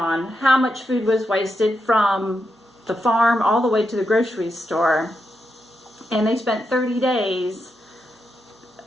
how much food was wasted from the farm all the way to the grocery store. And they spent 30 days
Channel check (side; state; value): both; normal; correlation 0.85